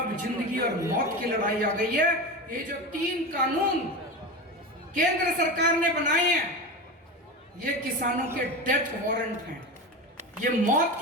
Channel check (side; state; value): both; normal; correlation 0.24